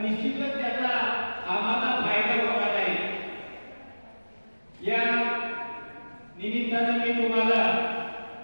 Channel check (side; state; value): both; inverted; correlation -1.00